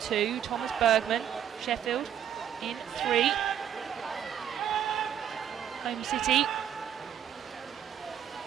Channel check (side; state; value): left; quieter; 9.6 dB